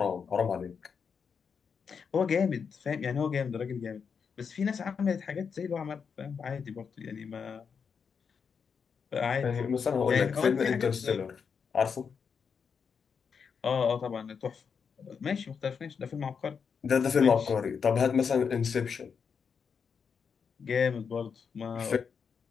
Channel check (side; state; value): right; quieter; 6.2 dB